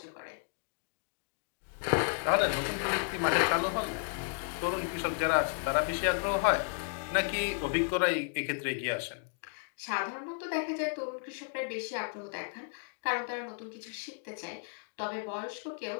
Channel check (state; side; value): silent; right; 55 dB below the other